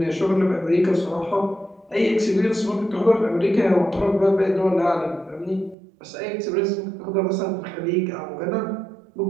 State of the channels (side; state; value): left; drops out; at 5.8 s